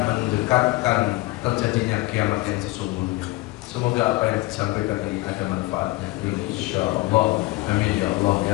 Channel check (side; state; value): right; quieter; 20.4 dB